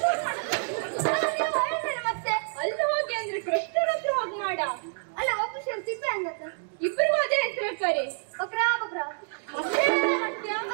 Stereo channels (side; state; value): left; silent; digital silence